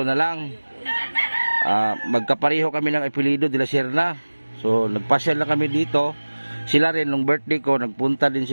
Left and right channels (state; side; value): inverted; both; correlation -1.00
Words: na lang. Magkapareho kami ng apelido, De La Serna. So, nagpasyal lang kami dito. Sila rin, nung birthday ko, nagpunta din